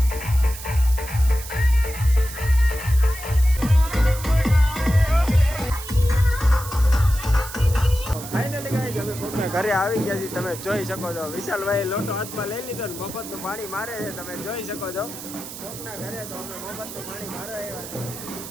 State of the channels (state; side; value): noise; right; hiss, 12 dB below the sound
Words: ઘરે આવી ગયા છીએ, તમે જોઈ શકો છો. વિશાલભાઈ લોટો હાથમાં લઈ લીધો ને મફતનું પાણી મારે છે, તમે જોઈ શકો છો. કોકના ઘરે તો અમે મફતનું પાણી મારવા આવ્યા છે.